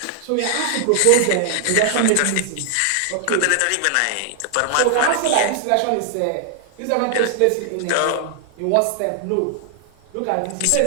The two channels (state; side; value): different; both; correlation 0.00